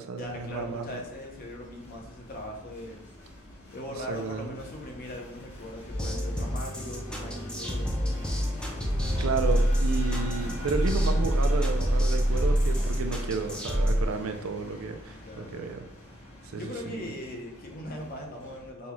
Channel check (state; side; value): normal; both; correlation 0.75